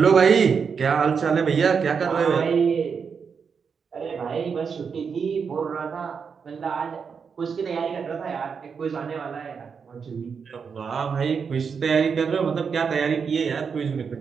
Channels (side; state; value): left; quieter; 6.1 dB